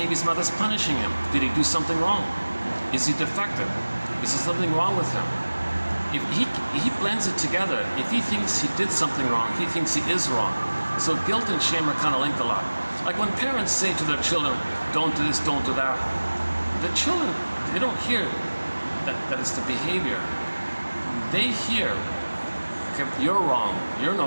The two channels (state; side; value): inverted; both; correlation -1.00